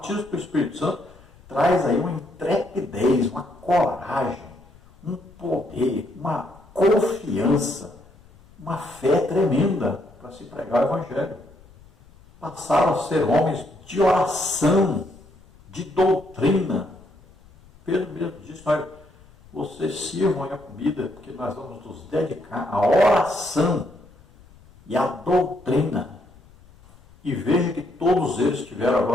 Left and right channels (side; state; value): left; noise; rumble, 26 dB below the sound